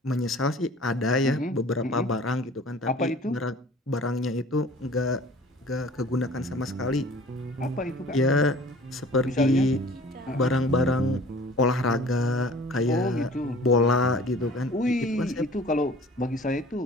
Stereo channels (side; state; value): both; normal; correlation 0.47